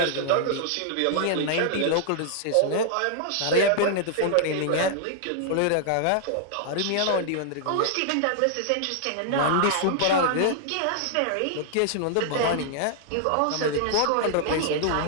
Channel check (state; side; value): different; both; correlation -0.01